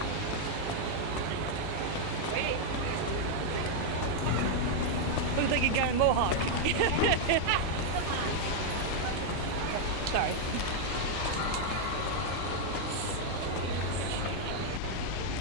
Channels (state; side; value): different; both; correlation 0.00